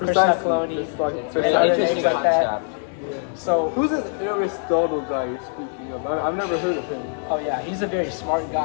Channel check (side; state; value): right; silent; 60 dB below the other